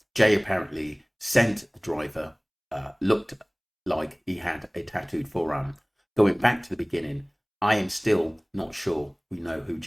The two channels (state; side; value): identical; both; correlation 1.00